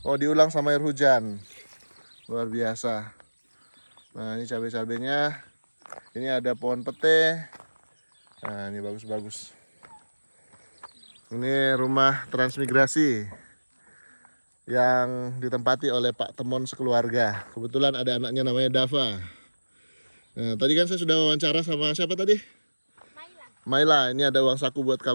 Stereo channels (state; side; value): inverted; both; correlation -1.00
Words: Oh, diulang sama air hujan. Luar biasa. Nah, ini cabai-cabainya. Ini ada pohon pete. Nah, ini bagus-bagus. Ini rumah transmigrasi yang ditempati oleh Pak Temon sekeluarga. Kebetulan ada anaknya namanya Dava. Nah, tadi kan saya sudah wawancara sama siapa tadi? Maila, ini ada uang saku buat